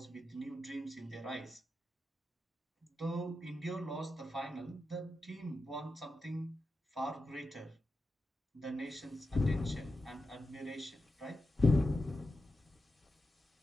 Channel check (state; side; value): normal; both; correlation 0.90